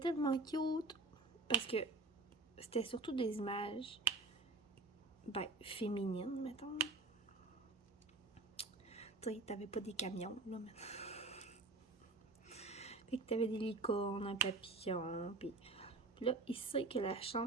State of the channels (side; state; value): left; quieter; 3.3 dB